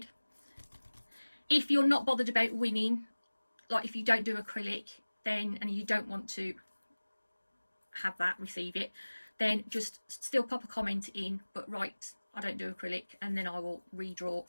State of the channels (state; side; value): inverted; both; correlation -1.00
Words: If you're not bothered about winning, like if you don't do acrylic, then, and you don't want to have that, receive it, then just still pop a comment in, but write, I don't do acrylic, and then I will redraw